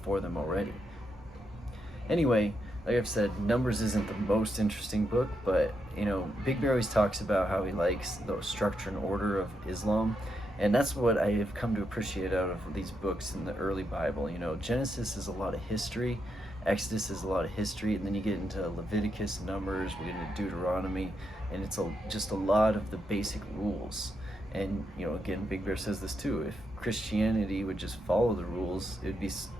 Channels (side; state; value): both; normal; correlation 0.82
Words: for them already. Anyway, like I've said, Numbers isn't the most interesting book, but Big Bear always talks about how he likes the structure and order of Islam, and that's what I have come to appreciate out of these books in the early Bible. Genesis is a lot of history, Exodus is a lot of history, and then you get into Leviticus, Numbers, we get into Deuteronomy, and it's just a lot of the basic rules. And again, Big Bear says this too, if Christianity would just follow the rules, it'd be